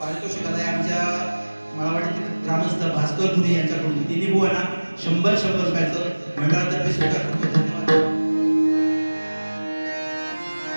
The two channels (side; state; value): both; inverted; correlation -1.00